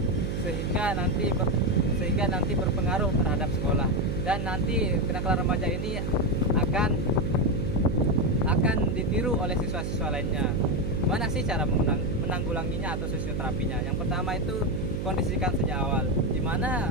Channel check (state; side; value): noise; right; hum, 2 dB below the sound